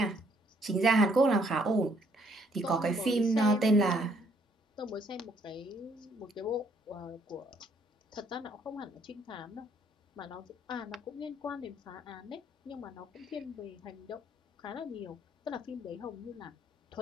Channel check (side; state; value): both; normal; correlation 0.67